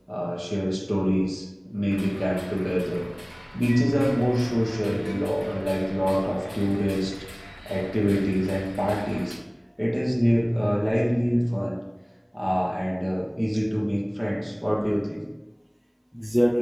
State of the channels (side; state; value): both; identical; correlation 1.00